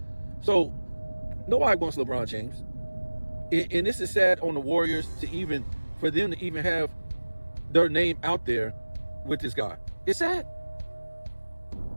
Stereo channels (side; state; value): both; inverted; correlation -1.00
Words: So nobody wants LeBron James. And this is sad on the Warriors for them to even have their name out there with this guy. It's sad.